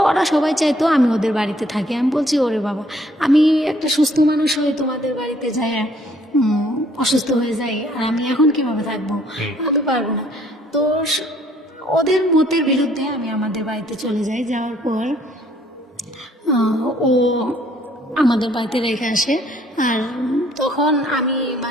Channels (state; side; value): normal; both; correlation 0.63